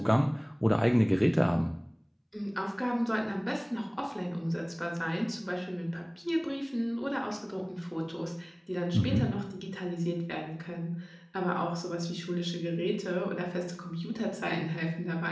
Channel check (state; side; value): identical; both; correlation 1.00